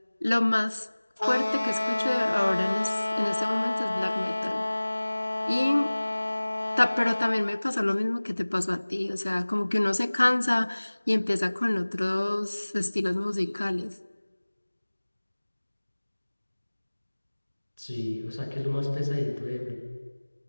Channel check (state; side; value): inverted; both; correlation -1.00